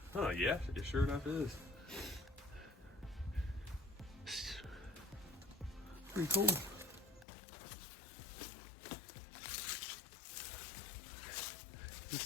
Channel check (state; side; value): drops out; right; at 7.2 s